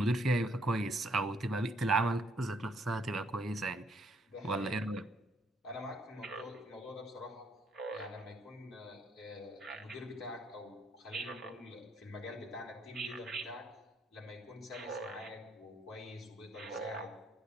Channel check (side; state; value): both; normal; correlation 0.70